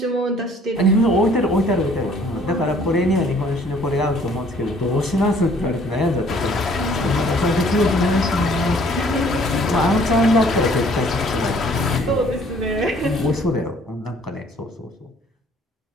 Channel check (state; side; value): normal; both; correlation 0.58